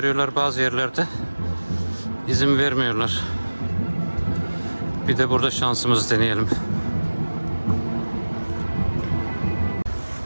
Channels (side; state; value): both; inverted; correlation -1.00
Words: bazı yerlerde izin vermiyorlar. Bir de burada şansımızı deneyelim.